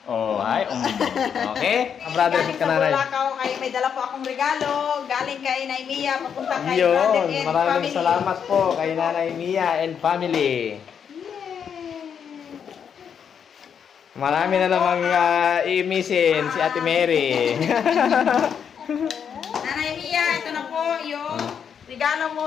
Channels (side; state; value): right; quieter; 7.6 dB